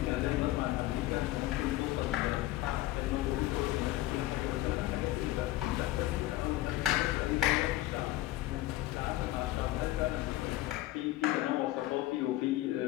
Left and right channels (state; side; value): quieter; right; 16.3 dB